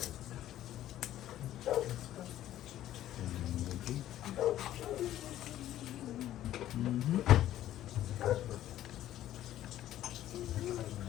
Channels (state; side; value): quieter; right; 12.9 dB